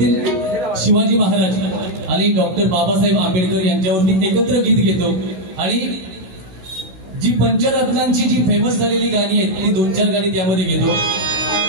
शिवाजी महाराज आणि डॉक्टर बाबासाहेब आंबेडकर यांच्यावरती एकत्र गीत घेतो आणि जी पंचरत्नांची जी फेमस झालेली गाणी आहेत ती 2-4 गाणी त्यामध्ये घेतो.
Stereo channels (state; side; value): late; left; 16 ms